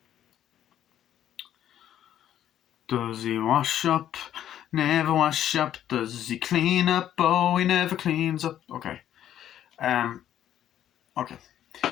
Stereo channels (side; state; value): right; quieter; 11.1 dB